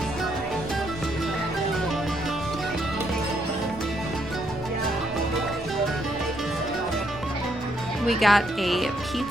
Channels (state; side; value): normal; both; correlation 0.74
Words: We got a